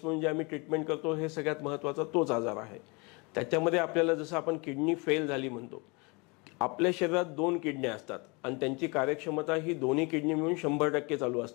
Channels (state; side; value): quieter; right; 29.0 dB